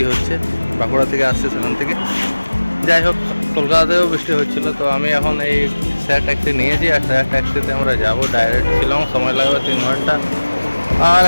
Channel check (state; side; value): inverted; both; correlation -1.00